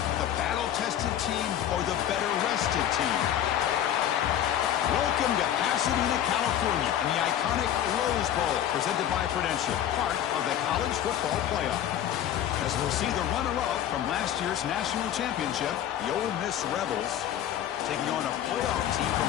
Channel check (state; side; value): quieter; right; 10.8 dB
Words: the battle-tested team or the better-rested team? Welcome to Pasadena, California, and the iconic Rose Bowl, presented by Prudential, part of the college football playoff. As we'll see the runner-up from last year's national championship, the Ole Miss Rebels, taking on a playoff team from